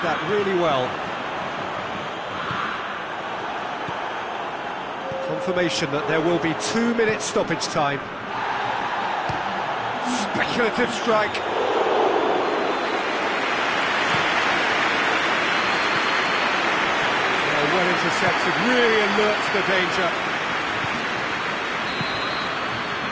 that really well. Confirmation that there will be 2 minutes stoppage time. Speculative strike. Well intercepted, really alert to the danger.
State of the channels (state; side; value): identical; both; correlation 1.00